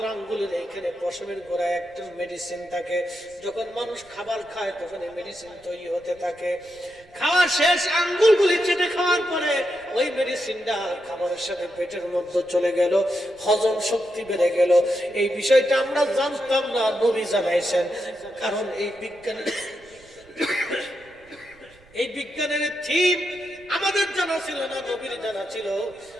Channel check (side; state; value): right; noise; rumble, 28 dB below the sound